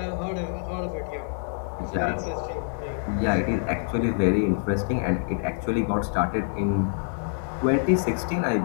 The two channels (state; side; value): silent; right; digital silence